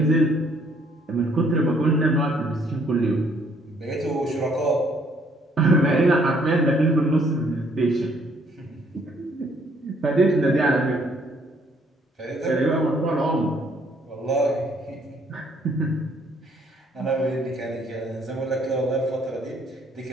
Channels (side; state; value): both; normal; correlation 0.65